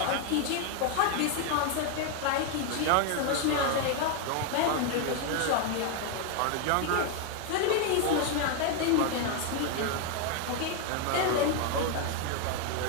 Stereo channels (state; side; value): different; both; correlation 0.01